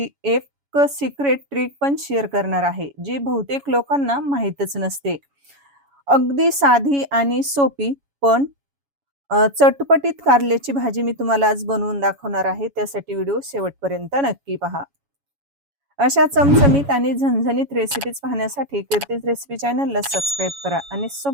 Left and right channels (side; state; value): left; late; 7.1 ms